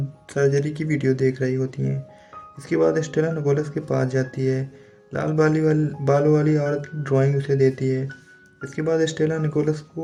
सर्जरी की वीडियो देख रही होती हैं। इसके बाद स्टेला निकोलस के पास जाती है। लाल बालों वाली औरत की ड्राइंग उसे देती है। इसके बाद स्टेला निकोलस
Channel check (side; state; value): both; identical; correlation 1.00